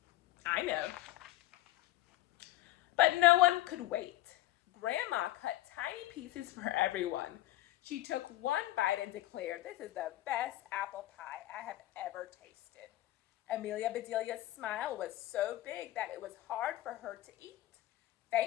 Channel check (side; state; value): right; quieter; 15.9 dB